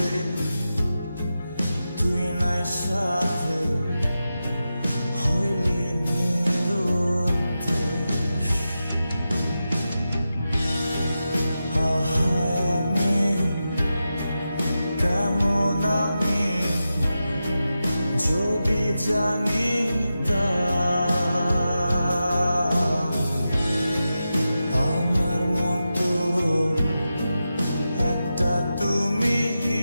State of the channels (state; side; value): inverted; both; correlation -0.91